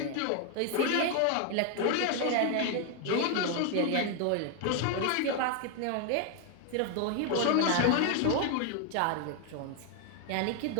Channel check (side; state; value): both; different; correlation 0.01